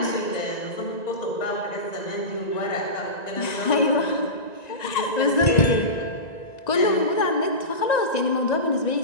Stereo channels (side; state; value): right; late; 1.9 ms